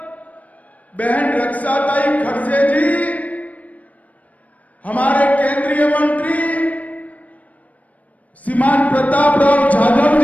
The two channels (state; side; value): late; right; 0.070 ms